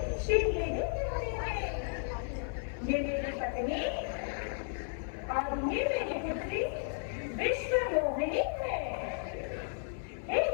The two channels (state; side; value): silent; right; 55 dB below the other